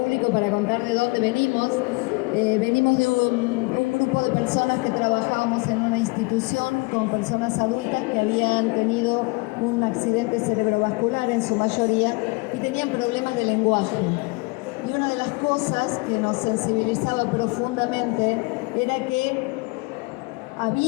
para contar de dónde venimos. Venimos de un grupo de personas que trabajábamos en una institución con personas adultas que habían tenido un accidente cerebrovascular en su mayoría y tenían problemas de lenguaje. Y una de las cosas que nos sensibilizaba profundamente era que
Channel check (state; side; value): quieter; right; 27.8 dB